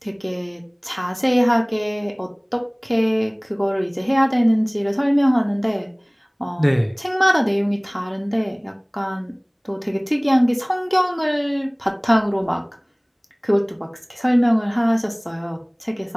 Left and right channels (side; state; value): both; identical; correlation 1.00